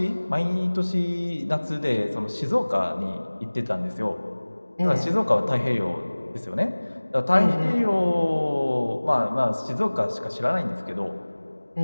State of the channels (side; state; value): both; inverted; correlation -1.00